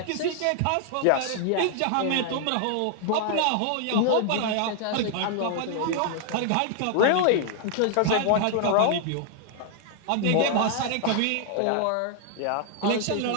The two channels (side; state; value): both; different; correlation 0.00